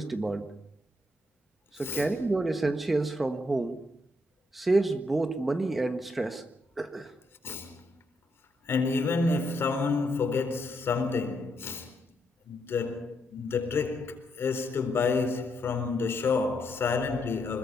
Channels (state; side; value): normal; both; correlation 0.78